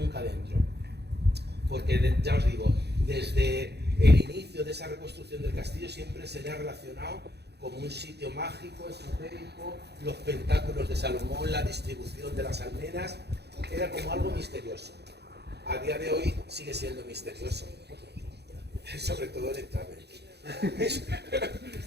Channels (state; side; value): late; left; 0.48 ms